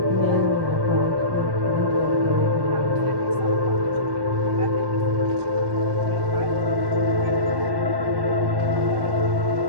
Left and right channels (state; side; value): late; left; 1.1 ms